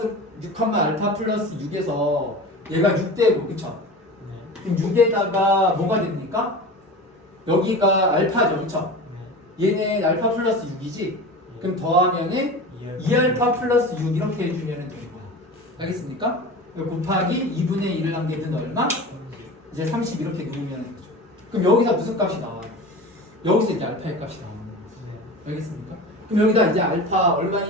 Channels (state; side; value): normal; both; correlation 0.33